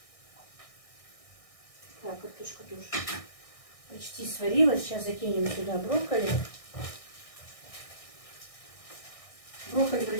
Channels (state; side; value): late; right; 1.6 ms